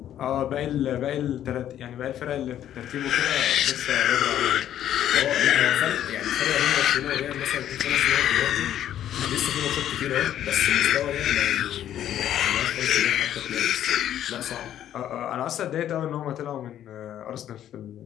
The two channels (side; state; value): right; quieter; 11.1 dB